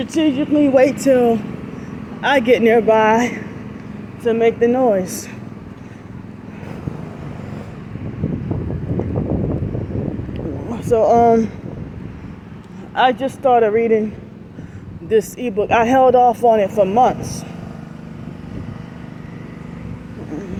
wait till I get nearby to make the noise. So I just started reading this ebook. I held off on it for months.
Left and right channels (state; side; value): identical; both; correlation 1.00